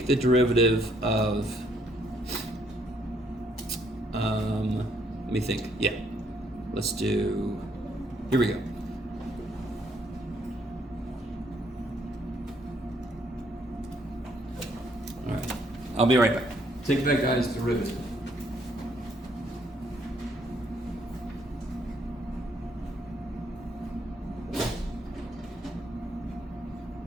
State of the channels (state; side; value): normal; both; correlation 0.69